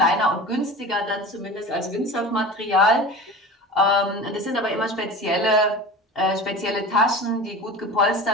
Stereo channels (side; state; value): both; normal; correlation 0.34